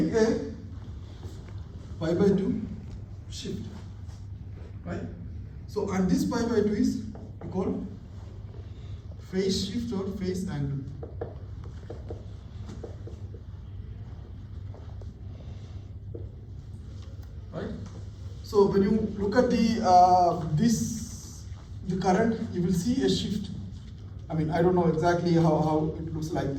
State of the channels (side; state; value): both; identical; correlation 1.00